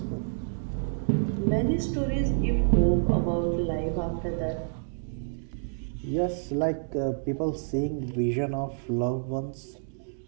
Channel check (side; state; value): left; silent; digital silence